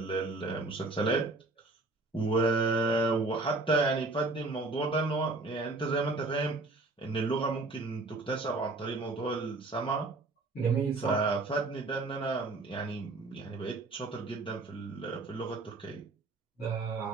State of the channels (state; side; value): quieter; left; 3.2 dB